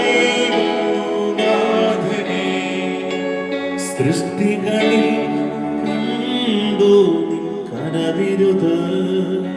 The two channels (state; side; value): identical; both; correlation 1.00